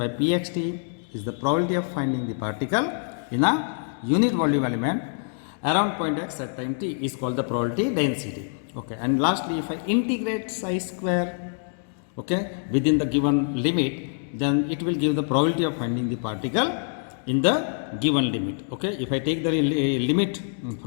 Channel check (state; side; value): silent; right; digital silence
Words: pxt is the probability of finding the particle in a unit volume element around point x at time t is called the probability density. Okay. And lastly, if I integrate psi square, okay, within the given limit, then it will give the probability of finding the particle in the given limit. Okay. If I take the limit